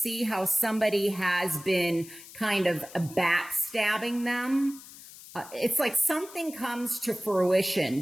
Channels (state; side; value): noise; left; hiss, 18 dB below the sound